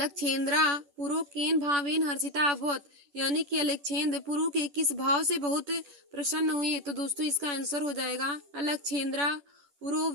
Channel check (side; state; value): left; late; 10 ms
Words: पुरु केन भावेन हर्षिता अभवत, यानी कि अलक्षेंद्र पुरु के किस भाव से बहुत प्रसन्न हुए। तो दोस्तों इसका आंसर हो जाएगा अलक्षेंद्रा पुरु